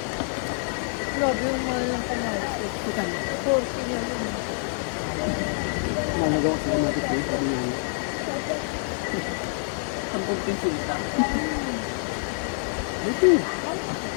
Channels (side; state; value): right; silent; 61 dB below the other